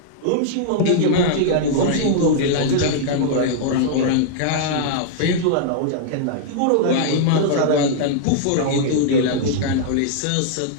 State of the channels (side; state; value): both; different; correlation -0.02